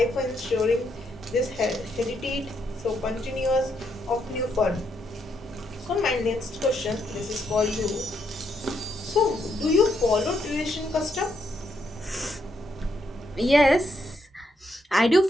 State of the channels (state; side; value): normal; both; correlation 0.77